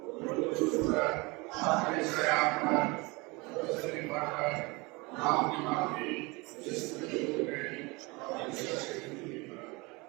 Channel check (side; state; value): left; quieter; 25.8 dB